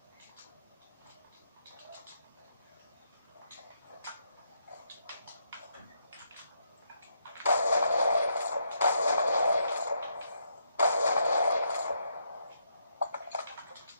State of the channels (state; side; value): inverted; both; correlation -0.77